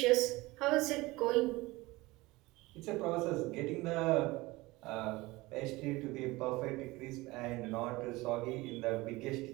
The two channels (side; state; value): left; quieter; 21.1 dB